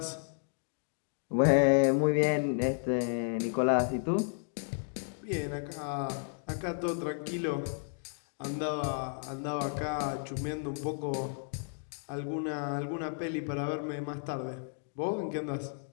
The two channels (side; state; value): right; silent; digital silence